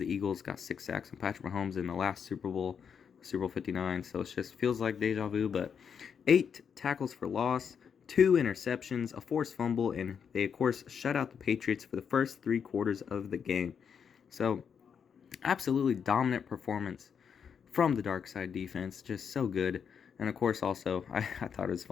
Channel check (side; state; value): right; quieter; 7.1 dB